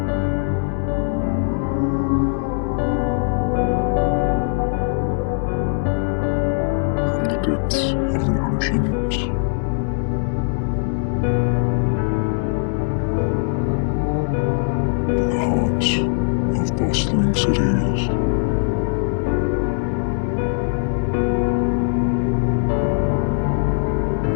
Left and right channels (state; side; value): silent; right; 65 dB below the other